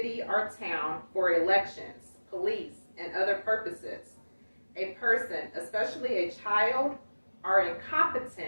or town for elections, police, and other purposes. A person, especially a child, or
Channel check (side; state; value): both; inverted; correlation -1.00